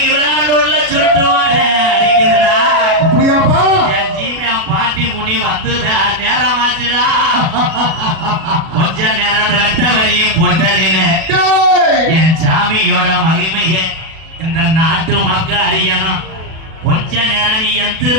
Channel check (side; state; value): left; late; 37 ms